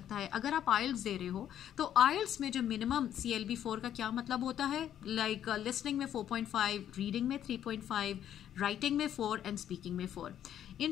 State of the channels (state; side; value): quieter; right; 10.5 dB